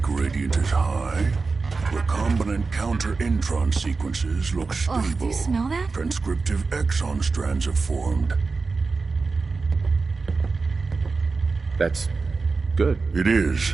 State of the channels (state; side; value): quieter; left; 4.2 dB